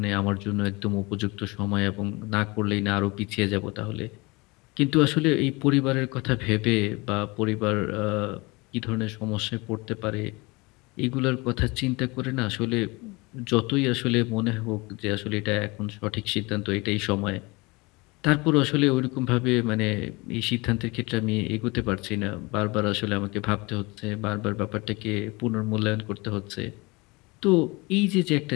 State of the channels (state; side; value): quieter; right; 25.2 dB